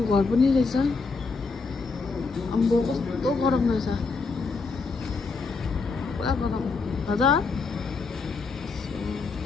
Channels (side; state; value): right; quieter; 4.3 dB